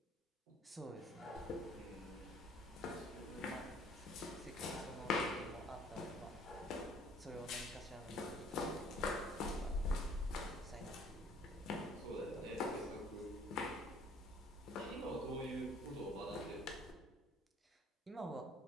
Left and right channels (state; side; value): normal; both; correlation 0.56